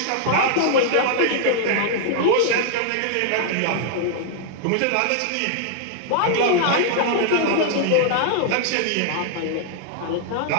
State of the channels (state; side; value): different; both; correlation -0.01